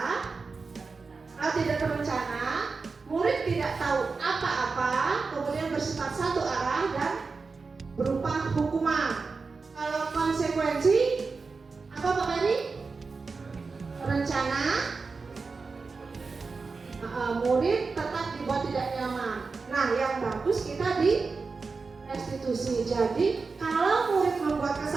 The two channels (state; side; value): quieter; left; 4.4 dB